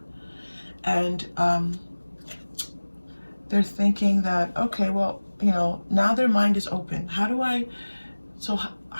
And they're thinking that, okay, well, you know, now their mind is open. How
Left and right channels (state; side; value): inverted; both; correlation -1.00